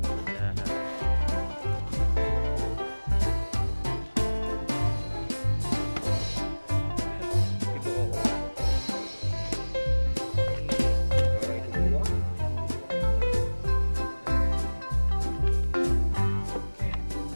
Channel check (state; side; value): inverted; both; correlation -1.00